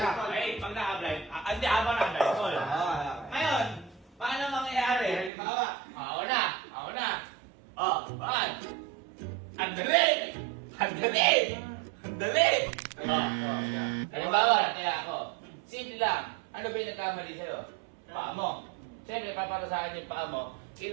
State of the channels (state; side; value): drops out; left; at 5.3 s